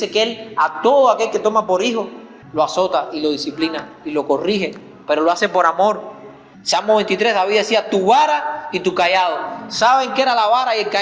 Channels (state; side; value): identical; both; correlation 1.00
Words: que Él a todo aquel que toma por hijo lo azota y lo disciplina y lo corrige, pero lo hace por amor. Salmo 23, David decía, tu vara y tu cayado. ¿Saben qué era la vara y el